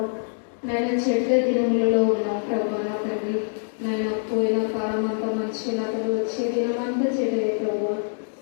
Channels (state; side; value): silent; right; digital silence